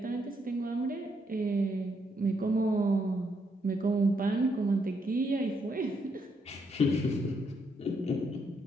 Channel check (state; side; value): normal; both; correlation 0.76